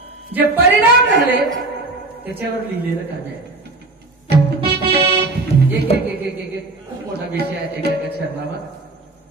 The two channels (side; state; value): left; quieter; 3.1 dB